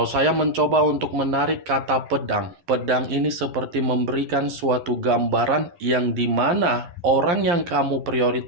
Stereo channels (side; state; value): left; late; 12 ms